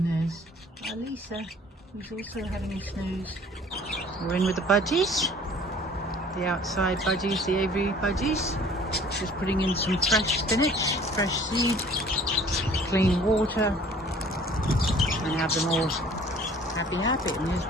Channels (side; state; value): both; normal; correlation 0.52